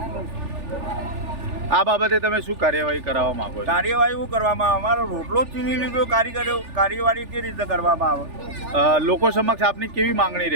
આ બાબતે તમે શું કાર્યવાહી કરાવવા માંગો છો? કાર્યવાહી શું કરવામાં આવે? અમારો રોટલો જ છીની લીધો, કાર્યવાહી કેવી રીતે કરવામાં આવે? લોકો સમક્ષ આપની કેવી માંગણી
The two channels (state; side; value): late; left; 3.4 ms